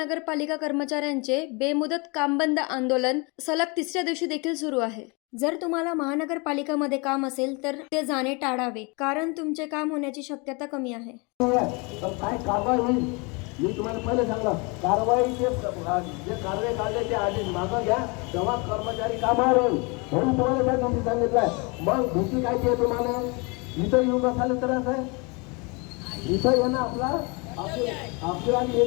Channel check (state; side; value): quieter; right; 29.8 dB